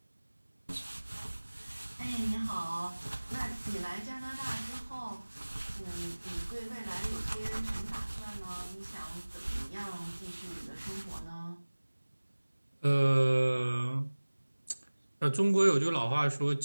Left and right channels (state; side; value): inverted; both; correlation -1.00